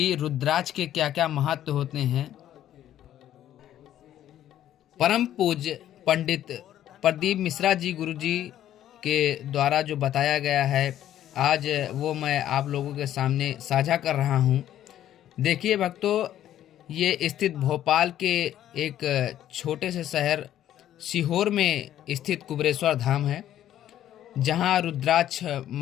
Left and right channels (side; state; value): right; quieter; 11.8 dB